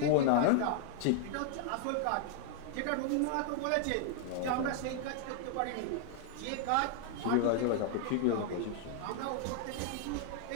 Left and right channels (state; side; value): different; both; correlation -0.01